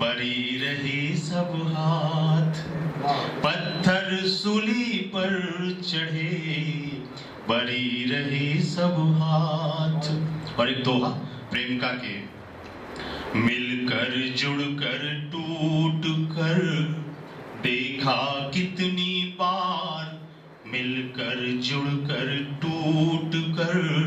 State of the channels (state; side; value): identical; both; correlation 1.00